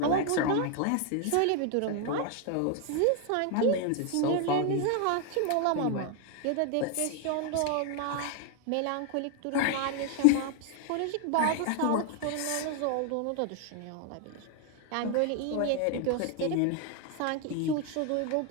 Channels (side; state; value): both; different; correlation 0.00